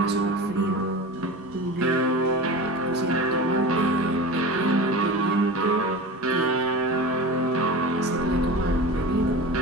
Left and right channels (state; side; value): normal; both; correlation 0.31